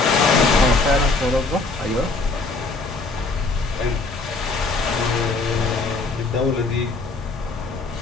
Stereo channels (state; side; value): quieter; right; 3.6 dB